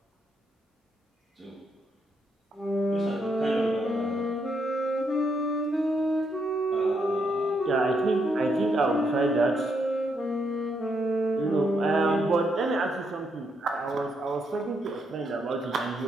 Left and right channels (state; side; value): normal; both; correlation 0.78